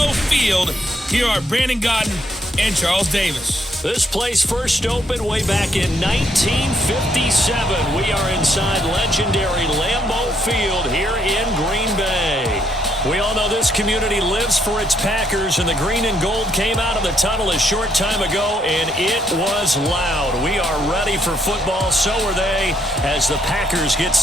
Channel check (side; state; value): both; normal; correlation 0.72